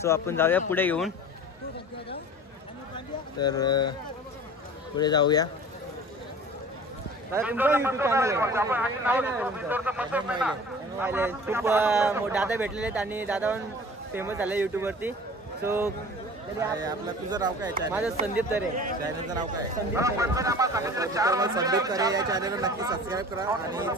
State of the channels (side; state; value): both; normal; correlation 0.42